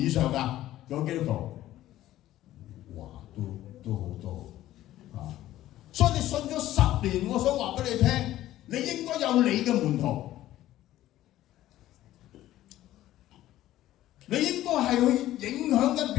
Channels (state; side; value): quieter; right; 14.2 dB